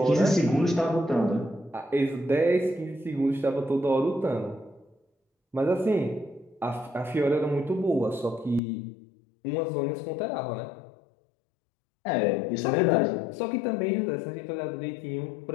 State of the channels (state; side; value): drops out; right; at 8.6 s